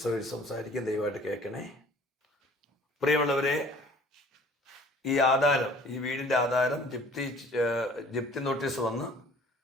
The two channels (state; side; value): normal; both; correlation 0.51